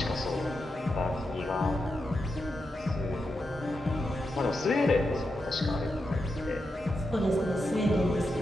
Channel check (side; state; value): both; normal; correlation 0.87